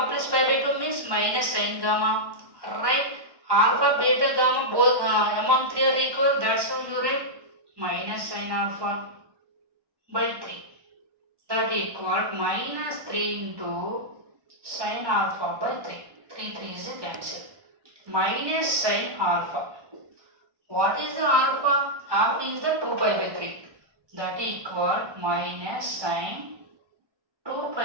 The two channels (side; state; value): left; late; 1.1 ms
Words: plus pi by 2 means minus sin gamma. Right? Alpha, beta, gamma both among 3 are equal. That's why you write minus sin alpha by 3. That equal minus 3 into sin alpha by 3. 3 is a cancel. Minus sin alpha. What is the alpha? Alpha is the 2 pi by 3. That equal minus sin 2